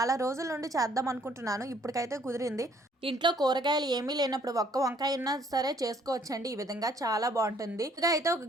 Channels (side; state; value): both; normal; correlation 0.63